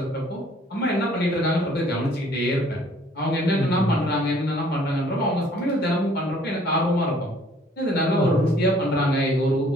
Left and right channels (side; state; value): both; normal; correlation 0.58